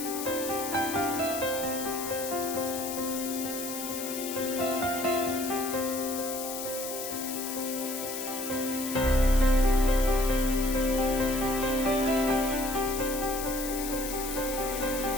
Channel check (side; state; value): left; noise; hiss, 6 dB below the sound